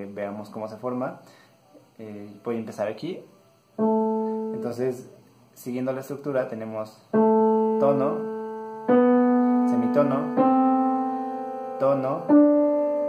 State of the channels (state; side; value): identical; both; correlation 1.00